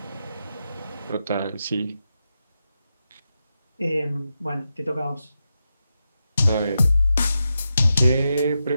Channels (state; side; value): inverted; both; correlation -0.88